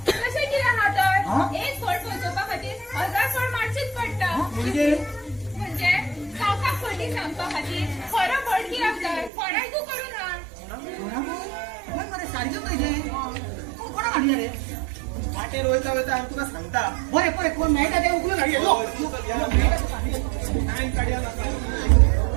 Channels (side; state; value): left; drops out; at 9.3 s